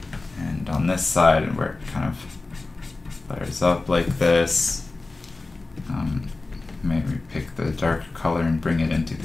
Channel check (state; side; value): quieter; right; 3.4 dB